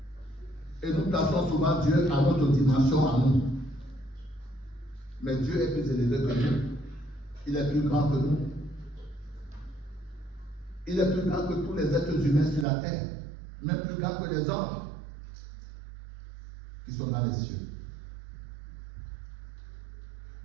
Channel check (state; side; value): drops out; left; at 12.7 s